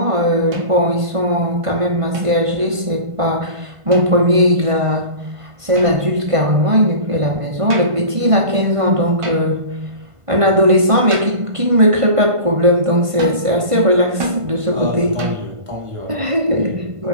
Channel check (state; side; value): late; left; 1.5 ms